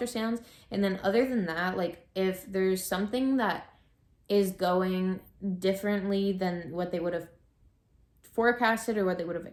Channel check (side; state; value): both; identical; correlation 1.00